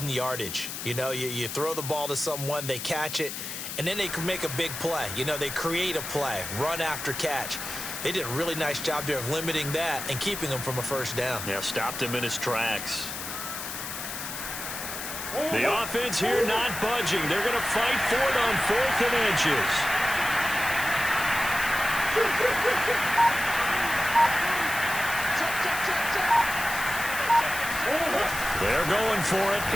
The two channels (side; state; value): left; noise; hiss, 7 dB below the sound